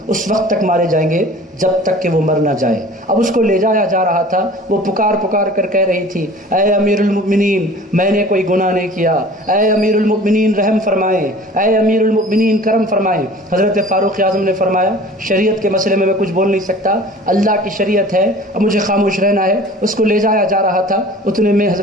اس وقت تک مارے جائیں گے جب تک کہ وہ مر نہ جائے۔ اب اس کو لے جایا جا رہا تھا، وہ پکار پکار کر کہہ رہی تھی اے امیر المؤمنین میں نے کوئی گناہ نہیں کیا، اے امیر المؤمنین رحم فرمائیں، اے امیر المؤمنین کرم فرمائیں۔ حضرت فاروق اعظم نے فرمایا شریعت کے مسئلے میں کچھ بول نہیں سکتا، اللہ کی شریعت ہے، اب مجھے خاموش رہنا ہے۔ اس کو لے جایا جا رہا تھا، اتنے میں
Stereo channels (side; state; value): both; normal; correlation 0.45